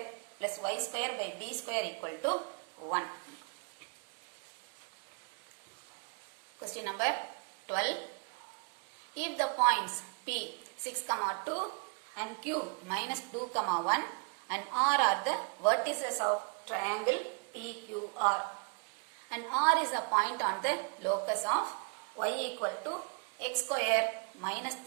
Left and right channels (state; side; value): quieter; left; 39.3 dB